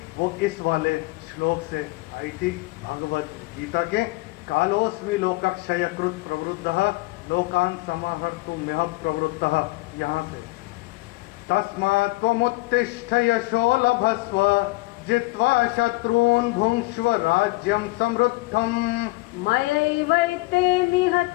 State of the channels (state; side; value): quieter; right; 22.8 dB